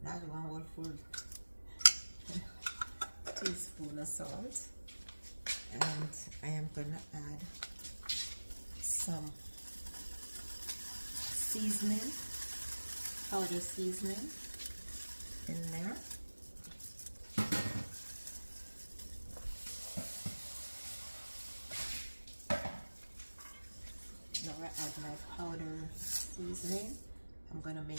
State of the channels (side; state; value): both; inverted; correlation -1.00